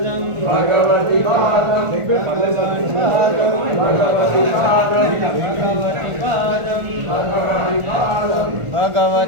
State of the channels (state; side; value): late; left; 1.4 ms